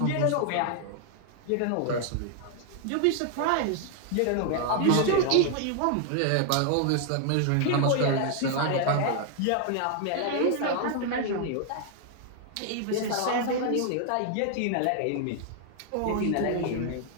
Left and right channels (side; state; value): both; different; correlation 0.00